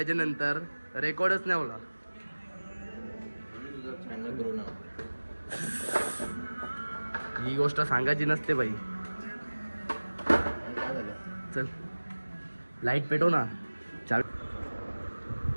रेकॉर्डच नाही होला. ही गोष्ट सांगायची नसते बाई. चल लाईट पेटव ना.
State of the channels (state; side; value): inverted; both; correlation -1.00